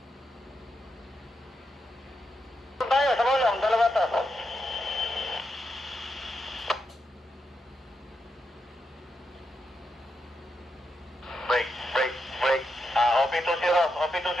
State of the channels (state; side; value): normal; both; correlation 0.84